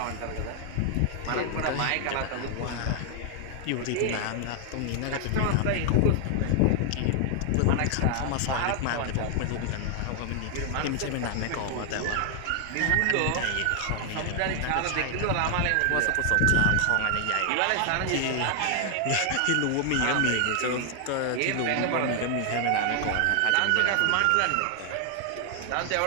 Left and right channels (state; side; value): different; both; correlation 0.00